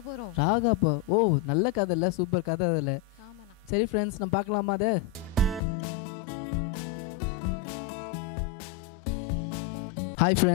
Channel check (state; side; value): drops out; right; at 5.6 s